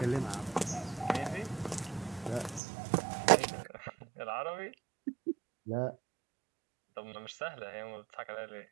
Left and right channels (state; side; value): drops out; left; at 2.6 s